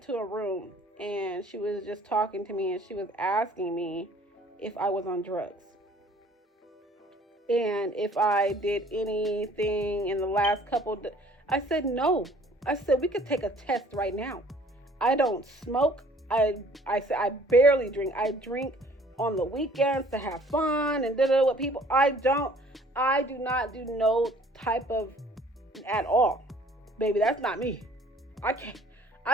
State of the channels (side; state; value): both; normal; correlation 0.55